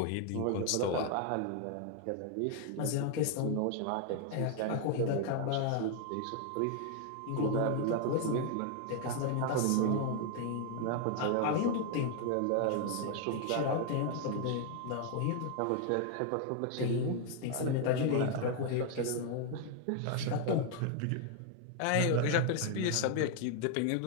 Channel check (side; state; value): both; different; correlation 0.00